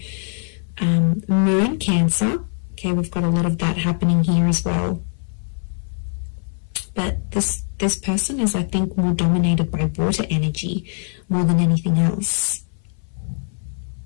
Moon, Cancer. Okay, we've got a lot of that happening here as well. But this person is, I think, more dominated by water energy more than anything else.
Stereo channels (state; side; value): silent; right; 60 dB below the other